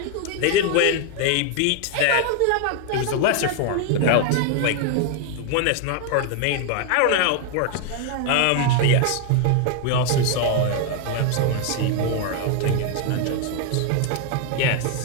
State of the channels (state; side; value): different; both; correlation 0.01